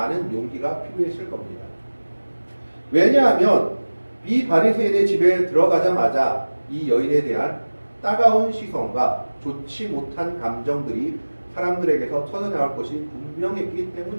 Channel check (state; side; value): inverted; both; correlation -1.00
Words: 용기가 필요했을 겁니다. 왜냐하면 이 바리새인의 집에 들어가자마자 이 여인에 대한 따가운 시선과 좋지 못한 감정들이 사람들에게서 터져나올 것이 분명했기